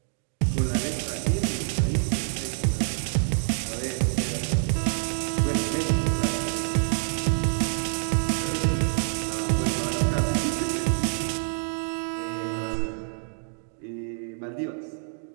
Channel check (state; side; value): silent; left; digital silence